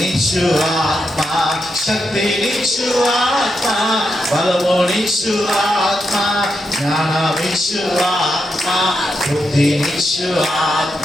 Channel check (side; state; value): both; normal; correlation 0.84